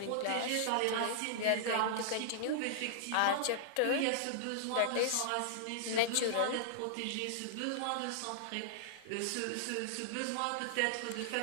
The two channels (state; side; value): different; both; correlation -0.02